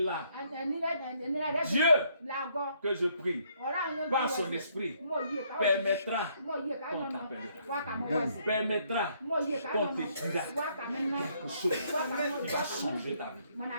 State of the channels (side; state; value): both; inverted; correlation -0.69